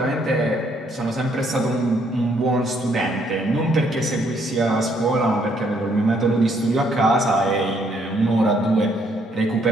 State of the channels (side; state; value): both; normal; correlation 0.69